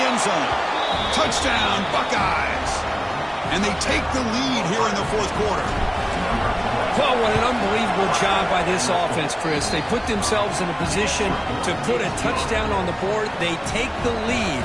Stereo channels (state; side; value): identical; both; correlation 1.00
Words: end zone. Touchdown, Buckeyes. And they take the lead here in the fourth quarter. Well, what an unbelievable job by this offense, Chris. They put themselves in a position to put a touchdown on the board. They take the lead.